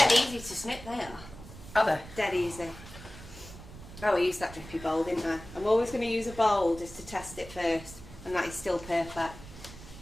easy to snip, they are. Are they? Dead easy. Oh, I used that drippy bowl, didn't I? I'm always going to use a bowl just to test it first, and that is still perfect.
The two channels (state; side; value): noise; right; rumble, 16 dB below the sound